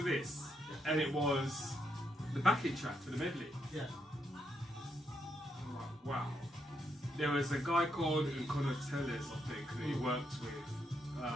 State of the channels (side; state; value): both; normal; correlation 0.79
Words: this. And it was the backing track for the medley. Yeah. I'm like, wow. There was a guy called Nkono Tellez, I think, that he worked